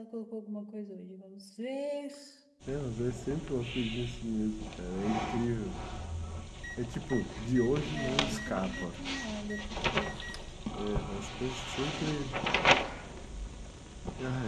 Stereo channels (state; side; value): identical; both; correlation 1.00